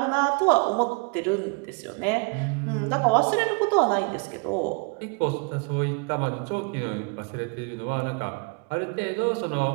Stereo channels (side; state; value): left; quieter; 33.6 dB